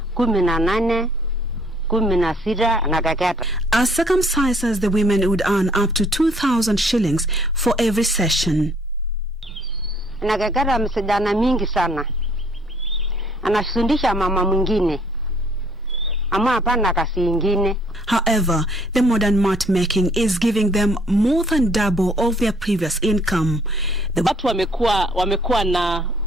18 16 na kaketa. As circumcisers, the women would earn up to 2,000 shillings for every session. Na kaketa msijana mingi sana. Anafundisha mama mwingine. Ama hapana kasi ingine. However, the modern mat making is giving them more than double of their previous income. Watu wamekuwa na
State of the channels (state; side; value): normal; both; correlation 0.62